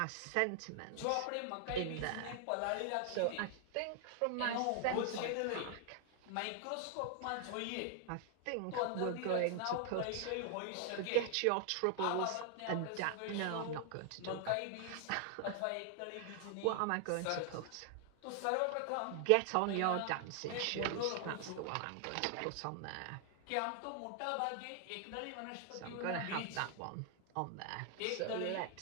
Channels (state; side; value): different; both; correlation 0.00